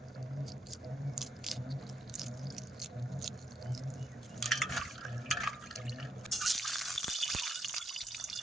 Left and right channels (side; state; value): both; normal; correlation 0.79